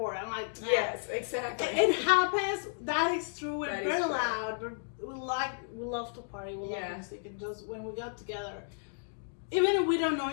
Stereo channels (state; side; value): silent; right; digital silence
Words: I'm like, yes, exactly. It happens. That is true. We're That is very true. loud. We love to party. We love music, and just when we got together, even if we don't know